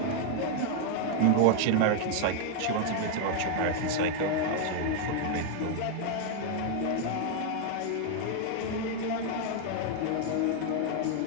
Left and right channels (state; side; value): different; both; correlation 0.00